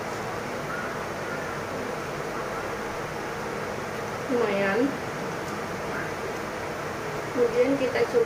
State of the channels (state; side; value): identical; both; correlation 1.00